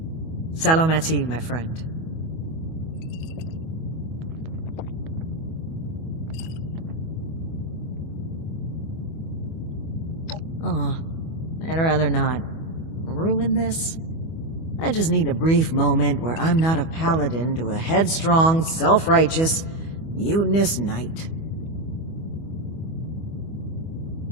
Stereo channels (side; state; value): right; late; 25 ms